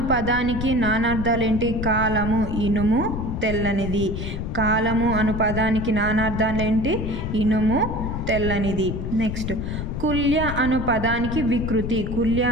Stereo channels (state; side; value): noise; left; rumble, 4 dB below the sound